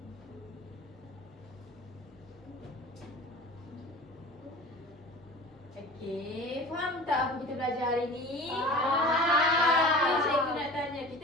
Okey, faham tak apa kita belajar hari ni? Faham. Okey, cikgu nak tanya,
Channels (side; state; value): both; normal; correlation 0.39